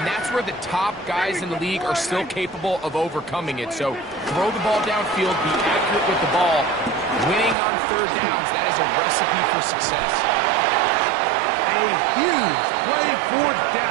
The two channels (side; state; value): left; drops out; at 7.6 s